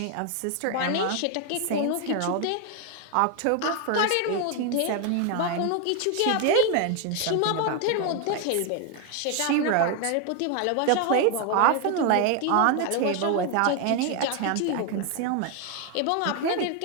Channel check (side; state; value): both; different; correlation 0.01